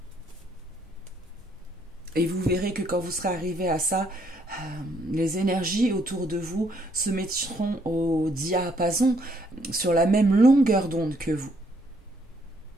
Et vous verrez que quand vous serez arrivé à ça, les énergies autour de vous se mettront au diapason, sur la même longueur d'onde que vous.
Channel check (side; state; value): both; normal; correlation 0.70